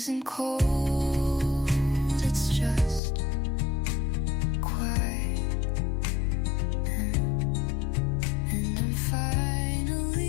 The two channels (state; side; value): drops out; right; at 3.0 s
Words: isn't cold, it's just quiet. And I'm